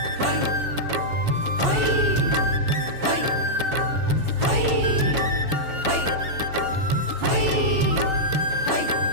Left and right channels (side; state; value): left; late; 7.1 ms